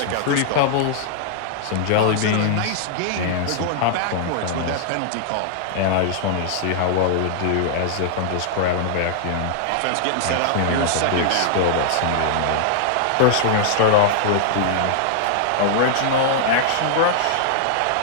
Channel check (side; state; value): both; different; correlation -0.01